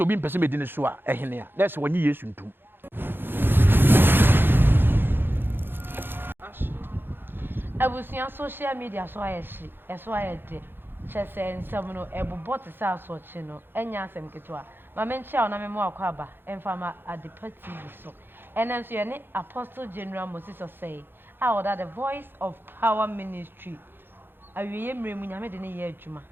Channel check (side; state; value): left; late; 0.10 ms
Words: bi person bedin so a ehene a let's wonyi yesu ntum abusia social media so ayeshi eso ayede chese nsem no ebobot sa asochi no enya asem ketwa ma menchia ona memo akwaba emfama Adepa TV so enenso ye ne Apostle General Moses Osei the Voice of Power Ministry awiye mremu nyame de ne ye adwuma